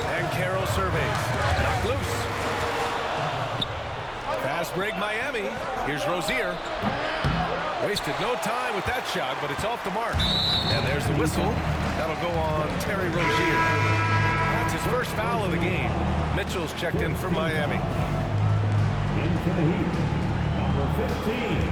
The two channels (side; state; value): both; identical; correlation 1.00